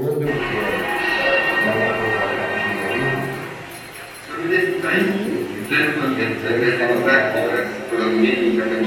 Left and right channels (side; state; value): both; identical; correlation 1.00